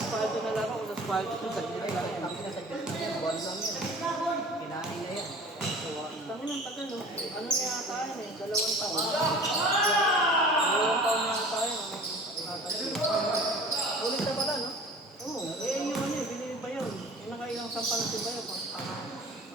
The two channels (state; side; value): normal; both; correlation 0.43